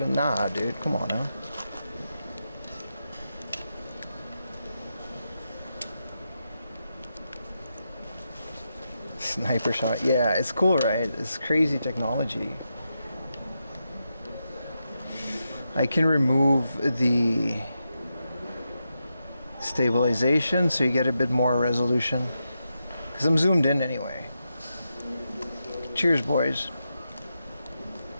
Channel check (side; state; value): both; inverted; correlation -0.87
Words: Nah, dude, come on now. Sniper shot. Yeah, it's cool, right? It's crazy technology. I can remove the stabilization so you get a bit more resolution. Because I'm zoomed in anyway. Cheers, boys.